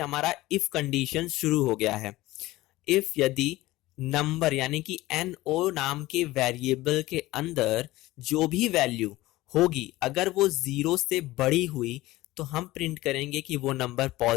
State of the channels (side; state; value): right; quieter; 18.0 dB